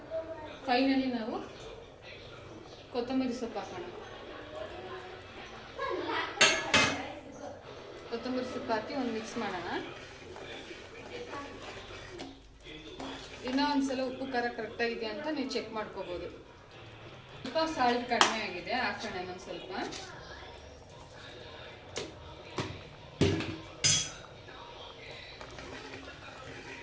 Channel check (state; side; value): identical; both; correlation 1.00